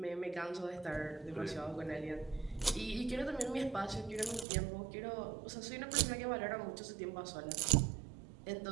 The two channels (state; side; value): drops out; left; at 4.5 s